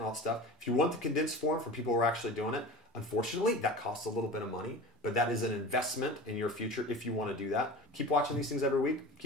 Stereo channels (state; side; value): normal; both; correlation 0.34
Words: all that stuff. If you want the condensed form for people who are actually doing it, unfortunately, that costs a little bit of money, but that is an investment in your future if you want to do that. Keep watching these things every week.